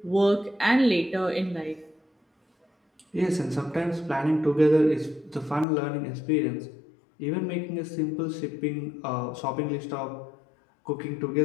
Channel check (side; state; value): right; drops out; at 5.7 s